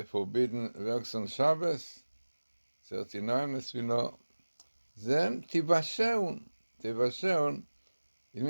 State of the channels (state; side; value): inverted; both; correlation -1.00